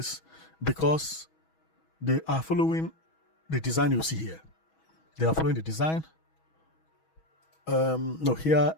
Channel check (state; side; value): late; right; 6.2 ms